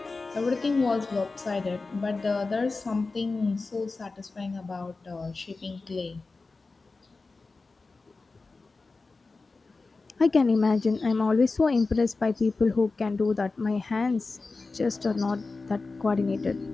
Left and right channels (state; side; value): quieter; right; 3.8 dB